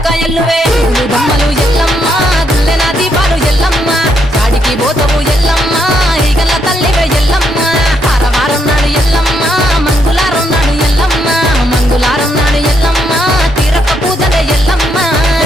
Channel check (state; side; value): normal; both; correlation 0.76